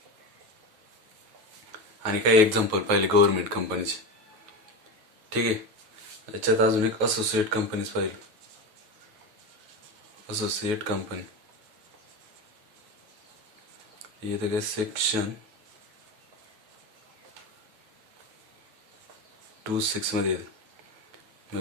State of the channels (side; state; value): left; late; 9.4 ms